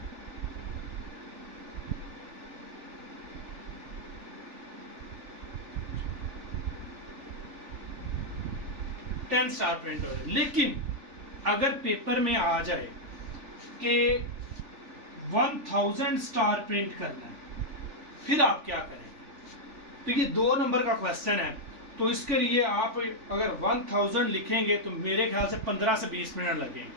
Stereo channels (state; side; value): late; left; 3.4 ms